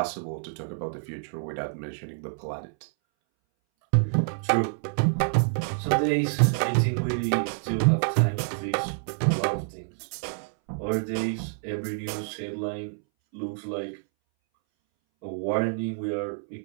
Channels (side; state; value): left; silent; 60 dB below the other